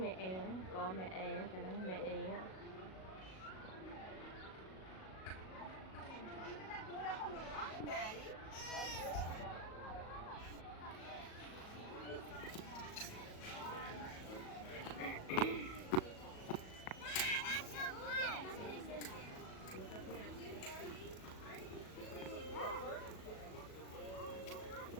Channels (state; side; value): late; right; 37 ms